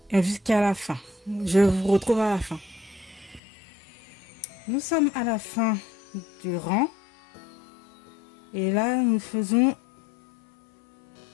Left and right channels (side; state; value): right; drops out; at 3.4 s